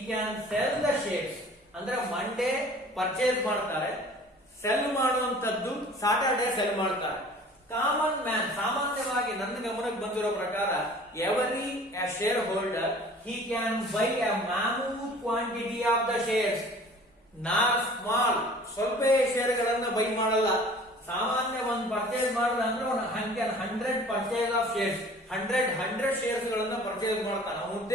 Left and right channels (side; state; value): both; normal; correlation 0.48